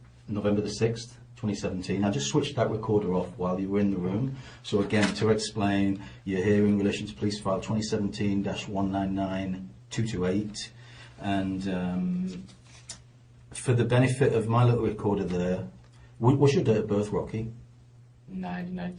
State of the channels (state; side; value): identical; both; correlation 1.00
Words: the 6th, 2017. I just switched that recorder off while you were in the room. So again, to explain, you're here in relation to police file 2017-199228, and for the benefit of my little recorder there, what's your date of birth, Rocky?